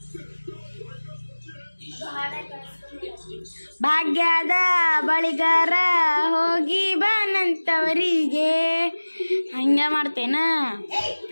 ಭಾಗ್ಯದ ಬಳಿಗಾರ ಹೋಗಿ ಬಾನಂತವರಿಗೆ ಹಂಗೆ ಮಾಡ್ತೇನ.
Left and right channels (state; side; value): inverted; both; correlation -1.00